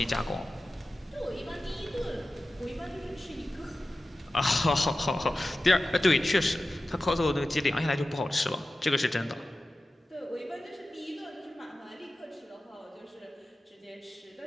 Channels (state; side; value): normal; both; correlation 0.95